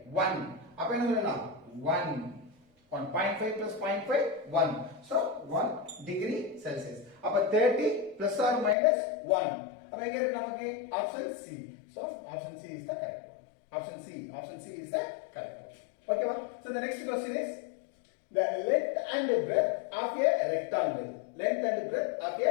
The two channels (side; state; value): right; drops out; at 8.8 s